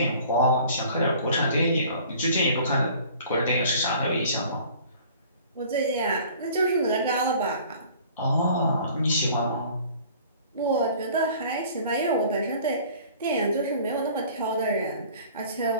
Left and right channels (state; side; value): inverted; both; correlation -0.49